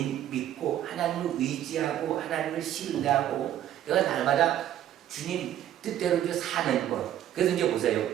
믿고 하나님을 의지하고 하나님을 신뢰하고 내가 날마다 주님 뜻대로 이제 사는 것. 그래서 이제 보세요.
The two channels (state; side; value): quieter; left; 11.5 dB